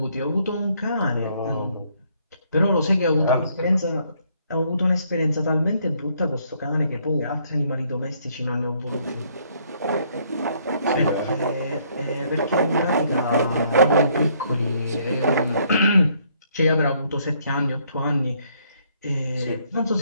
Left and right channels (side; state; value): both; inverted; correlation -0.68